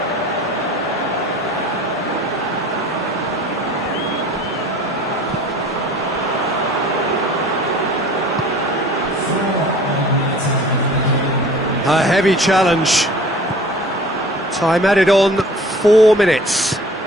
A heavy challenge. Time added on, 4 minutes.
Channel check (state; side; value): normal; both; correlation 0.46